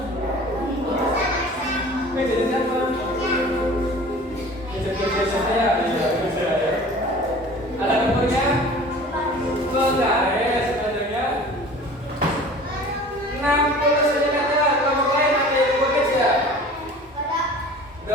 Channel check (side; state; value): both; normal; correlation 0.43